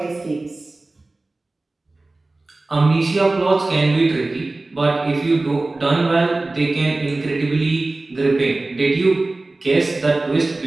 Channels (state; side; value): quieter; left; 3.1 dB